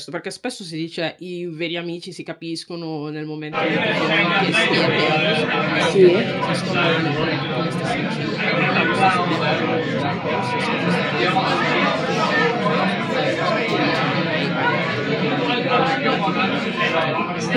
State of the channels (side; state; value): both; identical; correlation 1.00